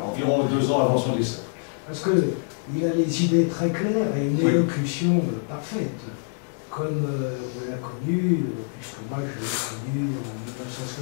environ 2 ans avant son décès. Parce qu'il a les idées très claires et une élocution parfaite, comme on l'a connu, puisque moi je l'ai connu en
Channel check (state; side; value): silent; right; digital silence